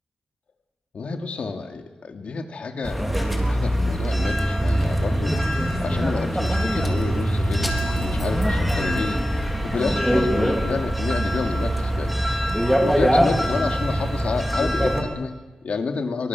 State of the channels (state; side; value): normal; both; correlation 0.93